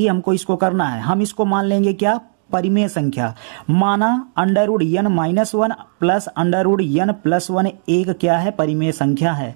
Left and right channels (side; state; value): left; silent; digital silence